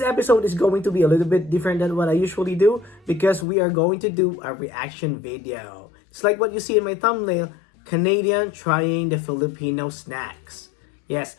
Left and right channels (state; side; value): drops out; right; at 3.5 s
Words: episode is going to be a little bit different than what I usually do because we are going to do a reaction video. It's like what you see in my thumbnail, Canadian trying the Filipino snacks. Yes,